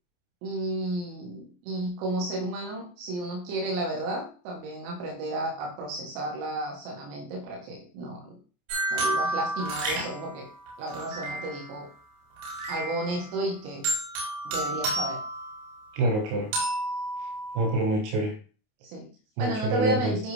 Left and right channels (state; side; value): late; left; 28 ms